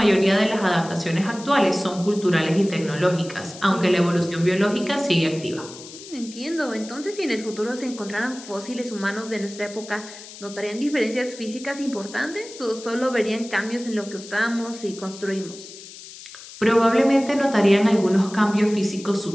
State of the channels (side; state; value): left; noise; hiss, 16 dB below the sound